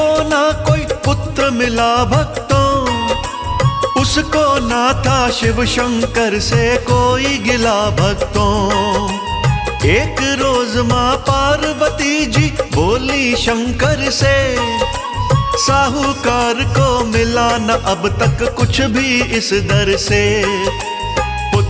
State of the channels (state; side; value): identical; both; correlation 1.00